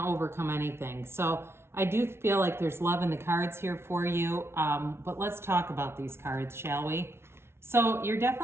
overcome anything. So I do feel like there's love in the cards here for you. But let's talk about these cards, shall we? So you're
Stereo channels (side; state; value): left; late; 0.12 ms